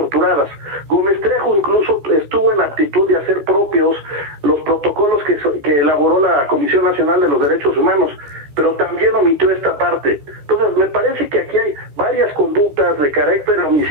Gómez Trejo incluso estuvo en aptitud de hacer propios los protocolos que elaboró la Comisión Nacional de los Derechos Humanos, pero también omitió esta parte. Entonces, me parece que aquí hay varias conductas de carácter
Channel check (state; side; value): late; left; 14 ms